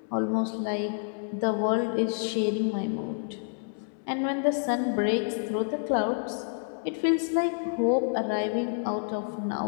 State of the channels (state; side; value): silent; right; digital silence